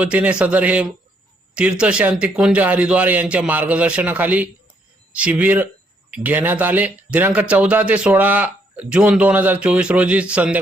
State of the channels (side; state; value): both; normal; correlation 0.72